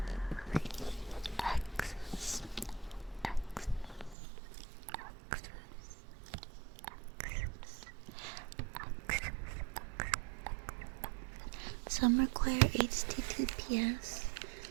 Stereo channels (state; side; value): drops out; left; at 4.2 s